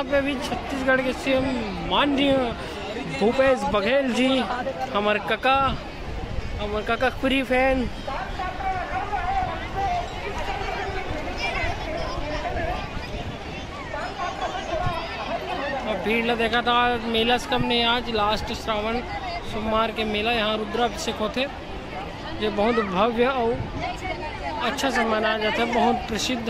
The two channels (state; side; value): identical; both; correlation 1.00